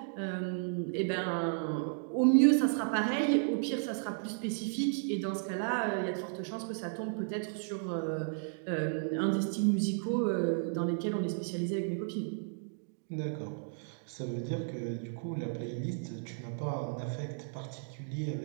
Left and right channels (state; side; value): silent; left; digital silence